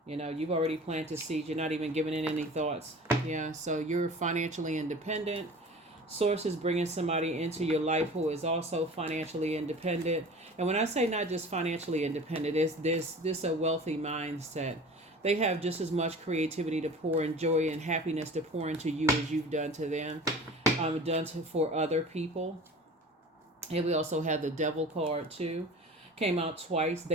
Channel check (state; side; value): normal; both; correlation 0.39